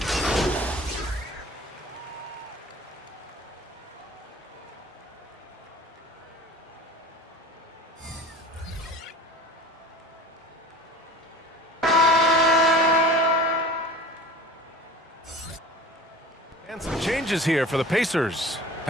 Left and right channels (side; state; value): both; normal; correlation 0.40